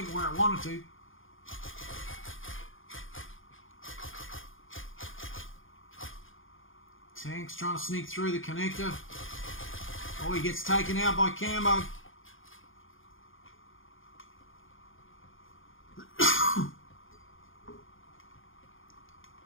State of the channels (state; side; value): late; right; 0.58 ms